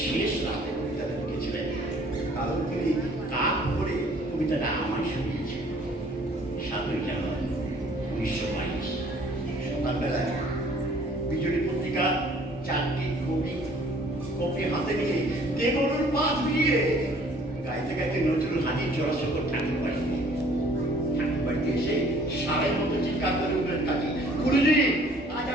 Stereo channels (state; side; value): normal; both; correlation 0.56